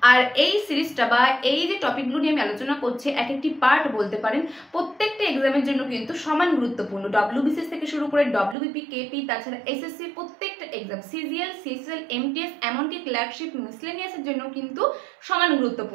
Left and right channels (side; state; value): left; drops out; at 8.6 s